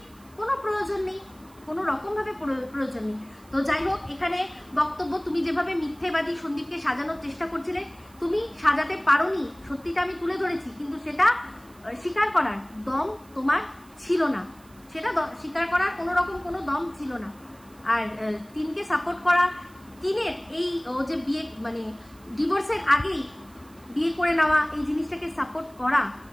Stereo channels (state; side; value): noise; right; hiss, 27 dB below the sound